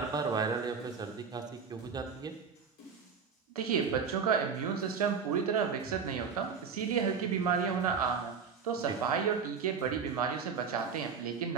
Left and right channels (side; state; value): left; quieter; 6.0 dB